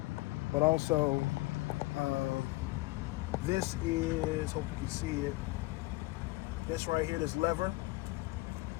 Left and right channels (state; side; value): quieter; right; 21.5 dB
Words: But also, this is, hope you can see it. This right here, this lever,